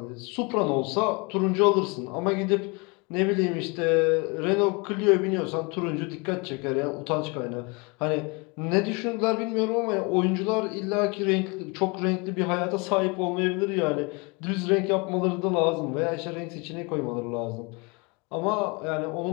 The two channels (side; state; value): right; quieter; 29.4 dB